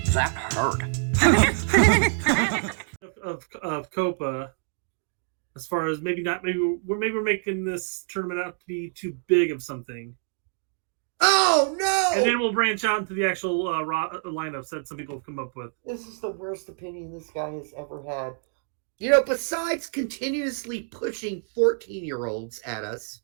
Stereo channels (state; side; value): silent; left; 60 dB below the other